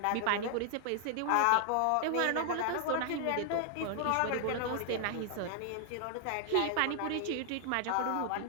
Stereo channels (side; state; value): both; different; correlation 0.00